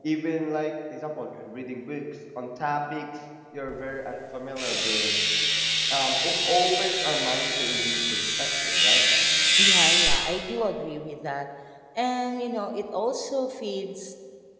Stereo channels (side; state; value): both; identical; correlation 1.00